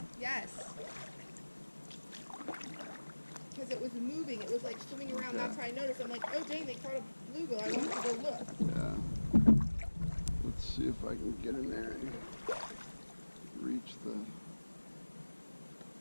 Yes. Because it was moving. It was like swimming around. Okay. That's how I noticed. I'm like, oh dang, they caught a bluegill. I wanted to go look. Yeah. Let's see if I can get in there and reach the...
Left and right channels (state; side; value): inverted; both; correlation -1.00